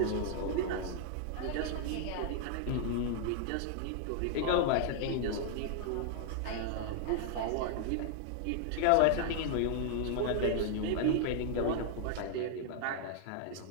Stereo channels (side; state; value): both; different; correlation 0.00